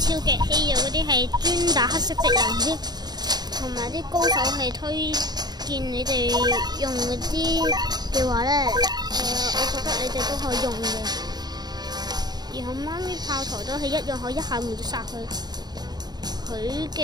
超級稀有嗰啲係專打黑色敵人啲，同埋啲高手係推薦你哋用嗰啲嘅話咧，我覺得你哋都可以用嘅。然後媽咪炮台都係一樣可以一下秒殺佢，佢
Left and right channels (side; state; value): left; late; 0.20 ms